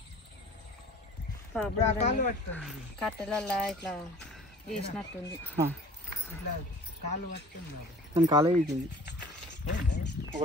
కట్టెలల్లా ఇట్లా వేసినట్టుంది కాలు పట్టుకుంది కాలే వేసింది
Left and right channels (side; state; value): both; normal; correlation 0.46